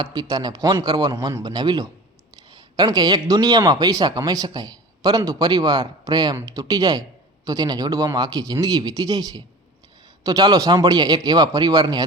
પિતાને ફોન કરવાનું મન બનાવી લો. કારણ કે એક દુનિયામાં પૈસા કમાઈ શકાય, પરંતુ પરિવાર પ્રેમ તૂટી જાય તો તેને જોડવામાં આખી જિંદગી વીતી જાય છે. તો ચાલો સાંભળીએ એક એવા પરિવારની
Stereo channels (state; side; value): normal; both; correlation 0.37